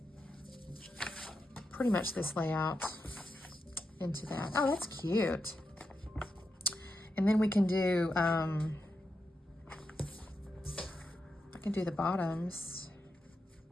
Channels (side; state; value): both; normal; correlation 0.87